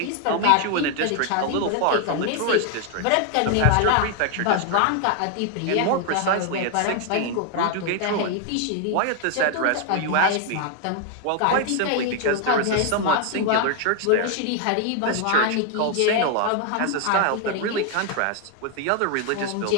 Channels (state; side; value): different; both; correlation 0.00